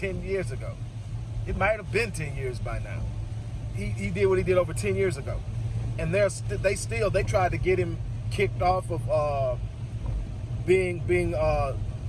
years ago. It might have been 10 years by now. He did what he did over 10 years ago. And they tried to get him kicked off of being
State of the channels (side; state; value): both; identical; correlation 1.00